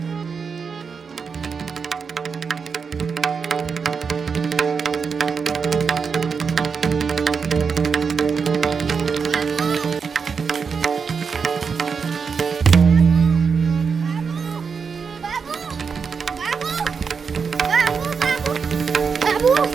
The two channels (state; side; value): quieter; left; 5.7 dB